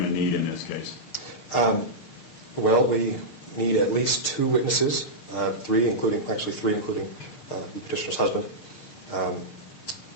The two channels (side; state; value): right; late; 6.5 ms